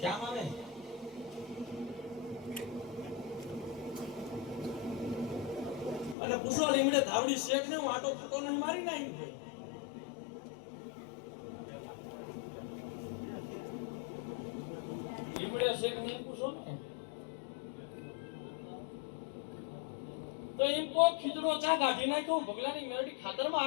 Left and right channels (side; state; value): right; drops out; at 6.2 s